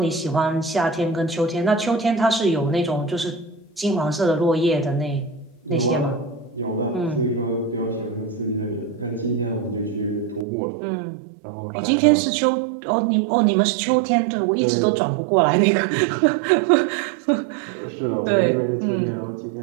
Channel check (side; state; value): left; drops out; at 10.5 s